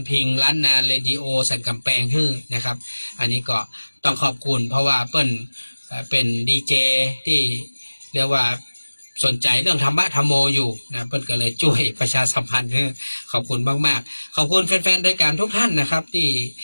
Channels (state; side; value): inverted; both; correlation -1.00